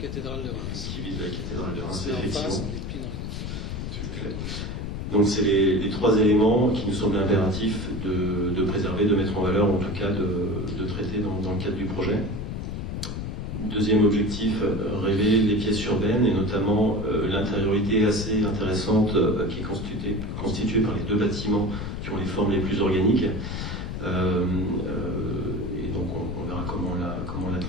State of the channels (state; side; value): noise; left; rumble, 5 dB below the sound